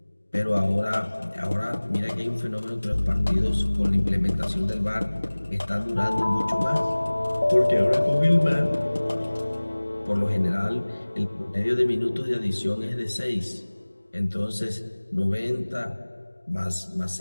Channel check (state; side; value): inverted; both; correlation -1.00